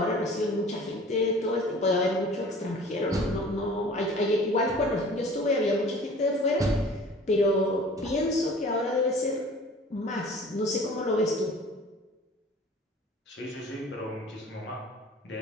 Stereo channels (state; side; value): normal; both; correlation 0.46